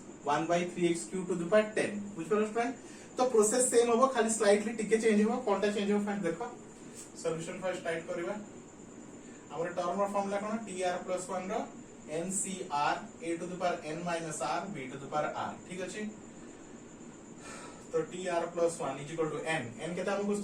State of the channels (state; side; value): identical; both; correlation 1.00